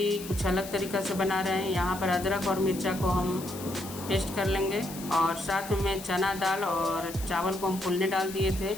कुछ अलग तरीक़ा से बना रहे हैं। यहाँ पर अदरक और मिर्चा को हम पेस्ट कर लेंगे और साथ में चना दाल और चावल को हम फूलने डाल दिए थे,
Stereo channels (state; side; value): noise; left; hiss, 13 dB below the sound